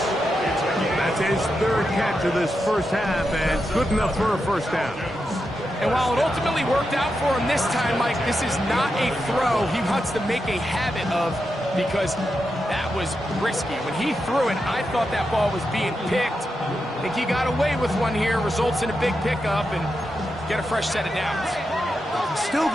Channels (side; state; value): both; normal; correlation 0.87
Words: That's his 3rd catch of this first half, and good enough for a first down. And while it ultimately worked out for him this time, Mike, this is not a throw he wants to make a habit of, because that was risky. When he threw it, I thought that ball was being picked. I think he got away with one here, results in a big pickup, and get a fresh set of downs. Still